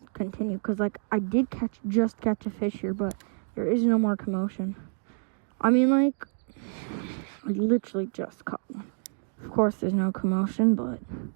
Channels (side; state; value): left; silent; 59 dB below the other